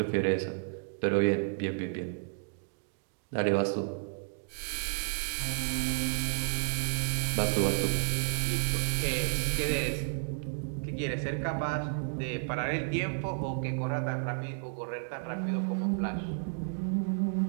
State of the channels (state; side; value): silent; left; digital silence